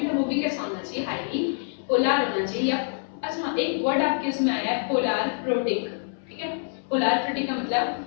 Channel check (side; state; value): right; silent; 61 dB below the other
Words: है वो भी कैसा होना चाहिए, हाईली पोलर होना चाहिए। या अच्छा एक वर्ड आपके उसमें आया है पोलर प्रोटिक, ठीक है। पोलर प्रोटिक का मतलब